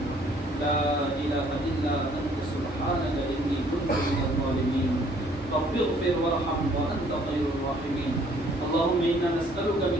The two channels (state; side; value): normal; both; correlation 0.61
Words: لا إله إلا أنت سبحانك إني كنت من الظالمين رب اغفر وارحم وأنت خير الراحمين اللهم إنا نسألك